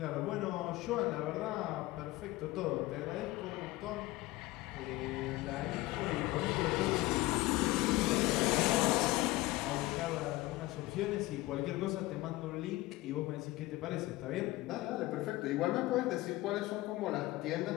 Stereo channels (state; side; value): quieter; right; 19.0 dB